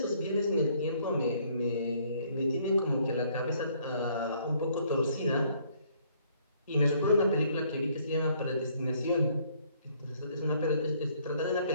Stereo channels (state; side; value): inverted; both; correlation -0.64